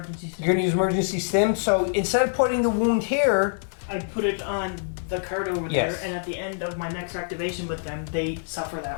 stim. You're going to use emergency stim, so instead of putting the wound here... I put it on the card over Yes. there, and at the end of my next activation with them, they suffer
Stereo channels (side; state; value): right; silent; digital silence